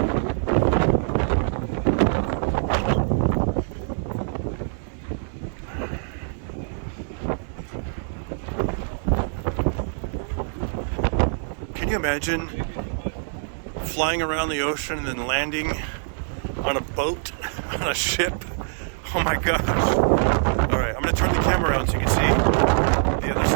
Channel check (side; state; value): left; silent; 62 dB below the other